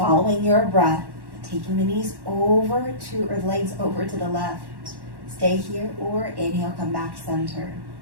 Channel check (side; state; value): left; late; 1.1 ms